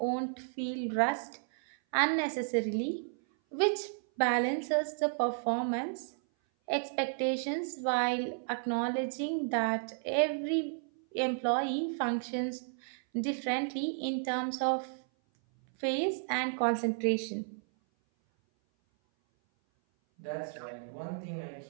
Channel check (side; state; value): left; silent; 56 dB below the other